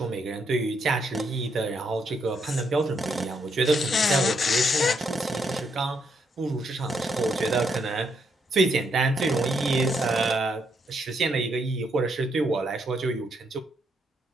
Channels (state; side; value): normal; both; correlation 0.76